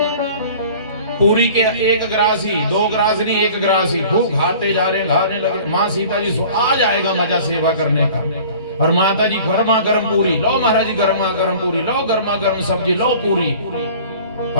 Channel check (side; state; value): both; inverted; correlation -0.45